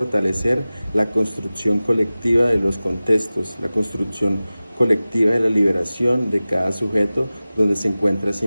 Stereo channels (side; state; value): both; inverted; correlation -0.97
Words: la construcción colectiva de los contextos, la construcción colectiva de la liberación de cada sujeto donde se encuentra a sí